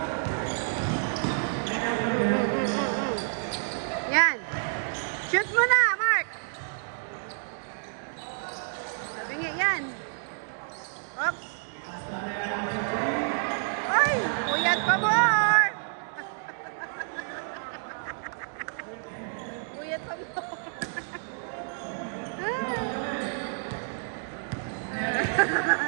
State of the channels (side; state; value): left; silent; digital silence